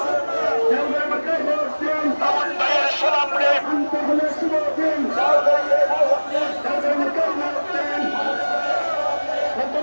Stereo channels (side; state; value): both; inverted; correlation -1.00